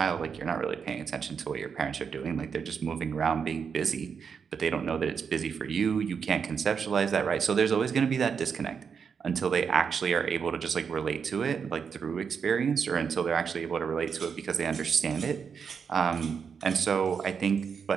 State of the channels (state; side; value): quieter; left; 6.4 dB